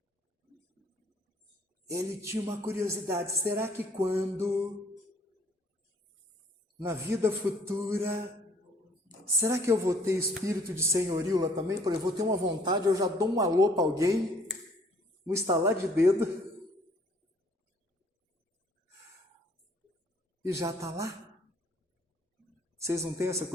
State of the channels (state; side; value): normal; both; correlation 0.60